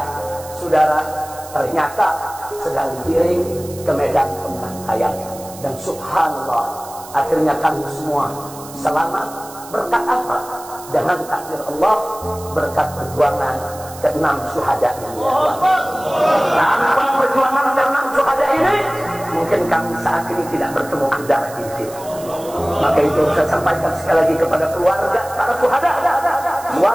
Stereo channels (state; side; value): noise; right; hiss, 17 dB below the sound